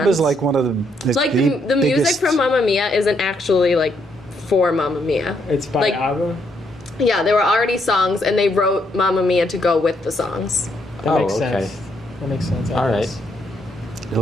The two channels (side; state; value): both; normal; correlation 0.75